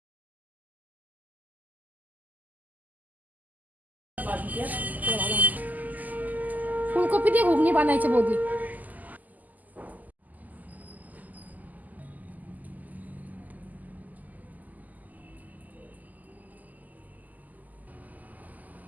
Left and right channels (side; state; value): left; late; 0.081 ms